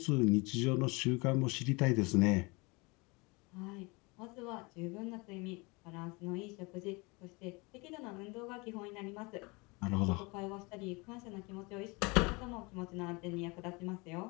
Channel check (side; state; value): right; quieter; 27.1 dB